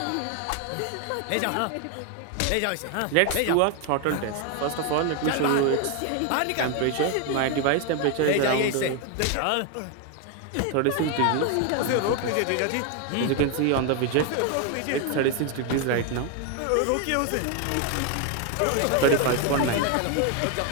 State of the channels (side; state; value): both; different; correlation 0.01